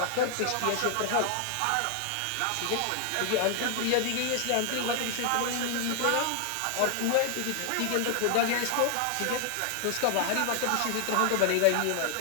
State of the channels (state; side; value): different; both; correlation 0.00